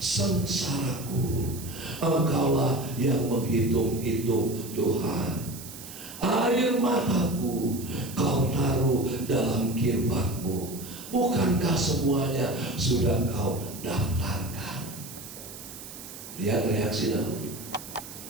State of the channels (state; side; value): noise; right; hiss, 13 dB below the sound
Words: sengsaraku, Engkaulah yang menghitung-hitung Tuhan. Air mataku Kau taruh dalam kirbatmu. Bukankah semuanya sudah Kau daftarkan? Lihat reaksi Daud.